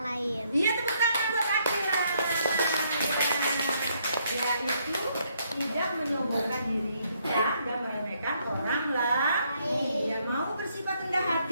lain. Iya, tepuk tangan buat Akila. Ya, itu tidak menyombongkan diri kita dan meremehkan orang lain. Yang mau bersifat rendah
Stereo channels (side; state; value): both; inverted; correlation -0.72